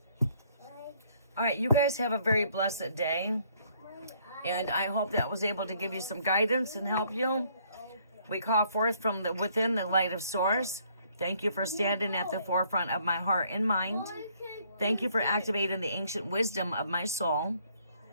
All right, you guys have a very blessed day, and I hope that was able to give you some guidance and help you. We call forth from within the light of source. Thank you for standing at the forefront of my heart and mind. Thank you for activating the ancient wisdom of my soul.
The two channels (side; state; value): both; inverted; correlation -0.65